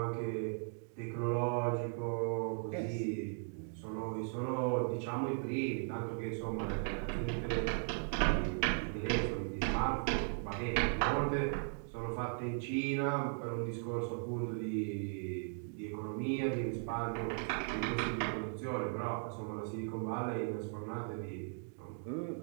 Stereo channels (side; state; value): left; silent; 53 dB below the other